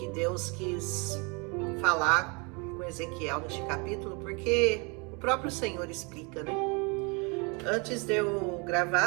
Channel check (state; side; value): quieter; left; 31.3 dB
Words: Deus quis falar com Ezequiel neste capítulo, porque o próprio Senhor explica, né? Antes de eu